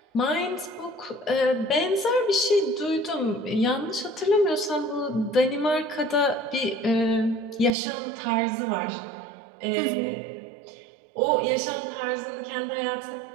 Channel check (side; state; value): left; drops out; at 7.7 s